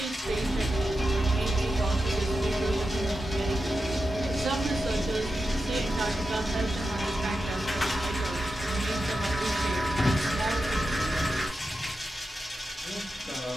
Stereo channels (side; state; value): both; normal; correlation 0.90